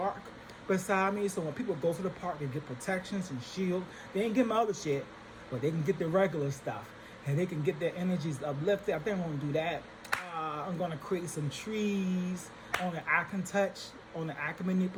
beside me. So when people go to the park, they get protections and shield. They ain't get my other shit, but they can get the regular stuff. And they can get their energies uplifted. I think I'm going to do that. I'm going to create some trees on that I can touch, on that I can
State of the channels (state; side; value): identical; both; correlation 1.00